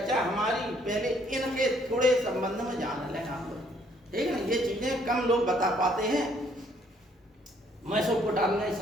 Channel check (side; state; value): both; normal; correlation 0.65